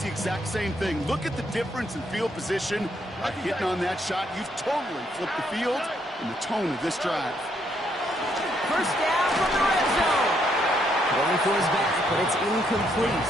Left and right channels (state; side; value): normal; both; correlation 0.73